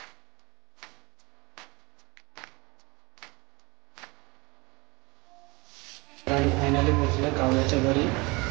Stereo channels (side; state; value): left; quieter; 26.2 dB